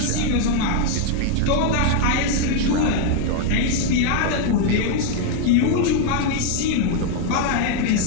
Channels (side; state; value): both; different; correlation 0.00